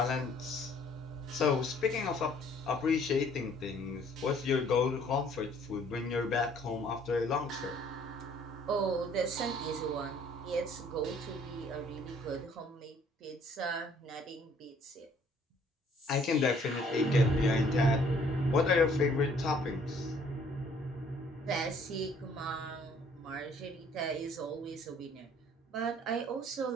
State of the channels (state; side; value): normal; both; correlation 0.59